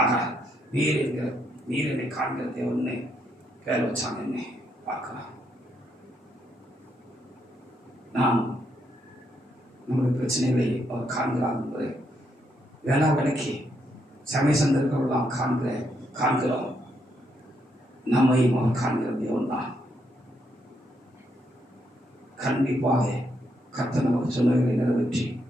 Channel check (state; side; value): normal; both; correlation 0.77